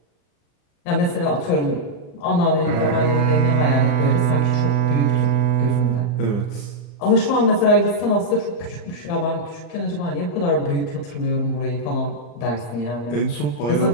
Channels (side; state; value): right; late; 35 ms